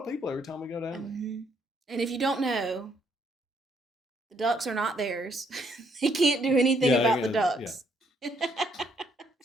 people every time we go down there. Mm-hmm. And if you don't know, the ducks are not theirs. They can't do anything about the ducks. Yeah.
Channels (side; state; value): both; normal; correlation 0.70